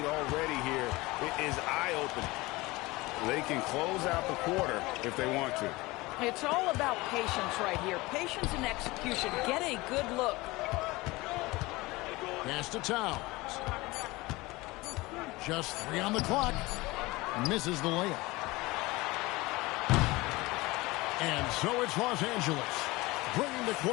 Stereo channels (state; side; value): quieter; right; 21.5 dB